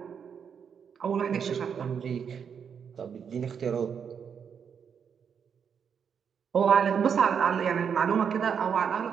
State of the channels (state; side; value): quieter; left; 7.2 dB